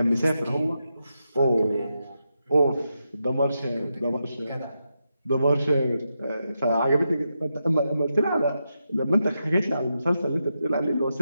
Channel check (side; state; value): both; inverted; correlation -0.86